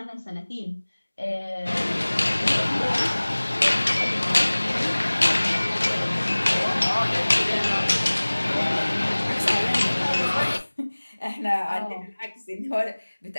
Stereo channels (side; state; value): both; inverted; correlation -1.00